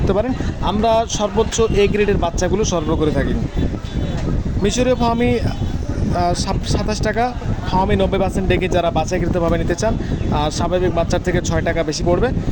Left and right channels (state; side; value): identical; both; correlation 1.00